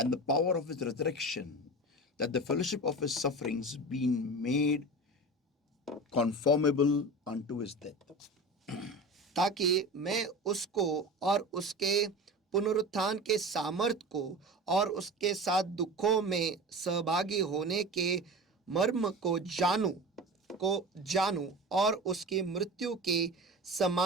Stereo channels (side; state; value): both; normal; correlation 0.32